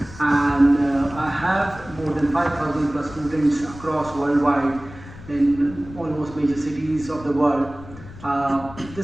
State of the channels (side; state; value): left; noise; rumble, 16 dB below the sound